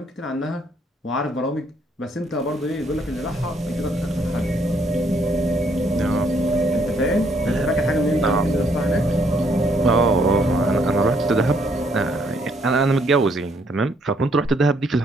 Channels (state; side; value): normal; both; correlation 0.69